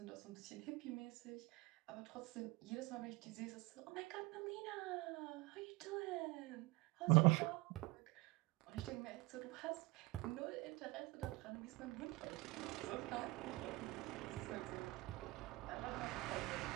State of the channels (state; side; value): quieter; left; 22.9 dB